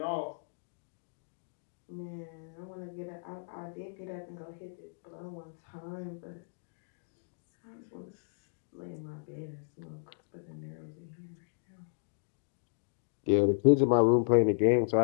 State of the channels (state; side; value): silent; right; digital silence